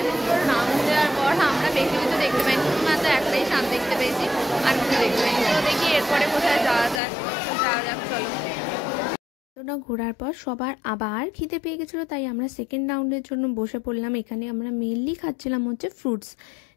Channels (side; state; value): right; drops out; at 7.0 s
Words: নাম দেওয়ার পর আমরা বেশি কিছু দেখতে পাইনি, মাত্র একটাই সাপ দেখতে পেয়েছি, আর কিছু দেখতে পাইনি। তো দেখি এরপরে কোথায় যাওয়া যাক, চলো। ওটা ঘোরার পর সবার আবার খিদে পেয়ে গেছিলো, তাই আমরা সেকেন্ড রাউন্ডের জন্য বসে পড়লাম। এখানে আমরা মেনলি খাচ্ছিলাম হচ্ছে ফ্রুটস,